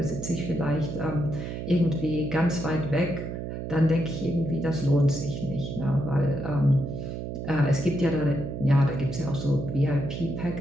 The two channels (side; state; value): right; noise; hum, 6 dB below the sound